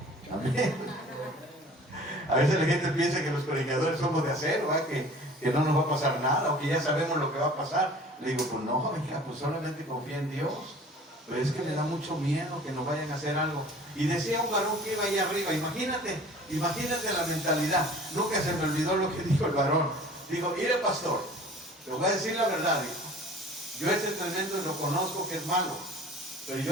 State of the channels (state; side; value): normal; both; correlation 0.46